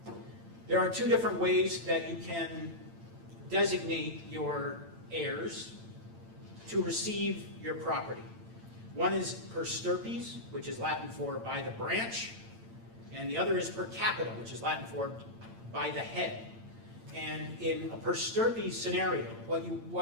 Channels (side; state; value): left; late; 8.8 ms